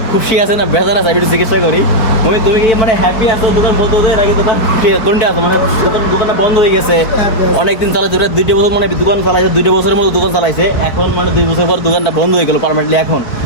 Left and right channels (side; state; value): right; late; 4.6 ms